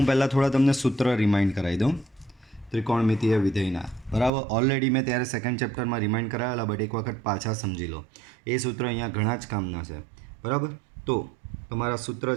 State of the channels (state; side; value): drops out; left; at 4.3 s